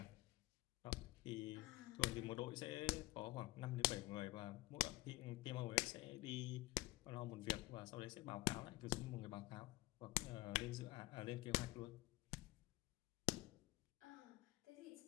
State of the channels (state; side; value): quieter; right; 20.3 dB